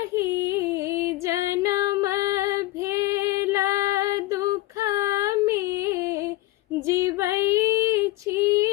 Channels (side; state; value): right; quieter; 18.0 dB